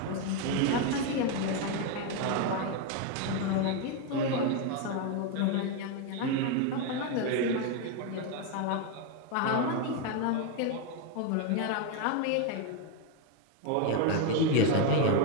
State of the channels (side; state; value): both; different; correlation 0.02